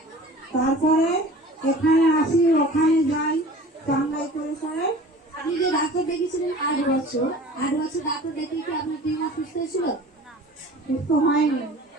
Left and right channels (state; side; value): normal; both; correlation 0.43